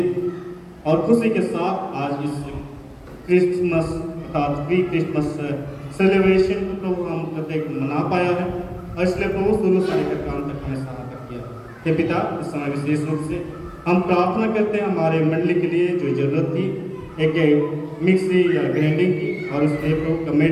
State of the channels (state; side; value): identical; both; correlation 1.00